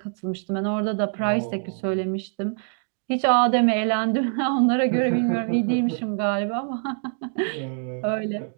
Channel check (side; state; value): left; silent; 62 dB below the other